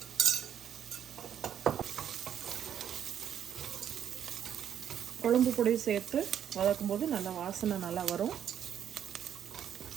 குழம்பு பொடி சேர்த்து வதக்கும்போது நல்லா வாசனை நல்லா வரும்.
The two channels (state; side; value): quieter; left; 9.4 dB